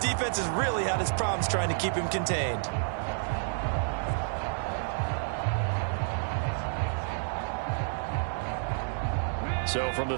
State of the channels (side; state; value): left; silent; digital silence